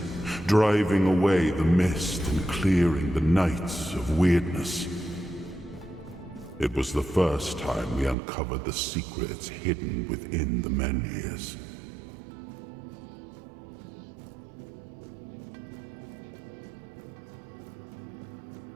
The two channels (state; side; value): drops out; left; at 8.2 s